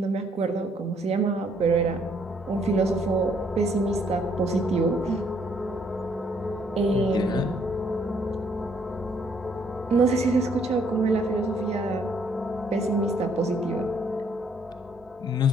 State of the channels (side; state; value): both; normal; correlation 0.67